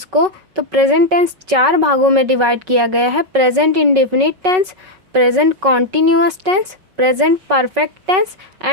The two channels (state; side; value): late; left; 5.3 ms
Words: को। तो प्रेजेंट टेंस 4 भागों में डिवाइड किया गया है। Present indefinite tense, present continuous tense, present perfect tense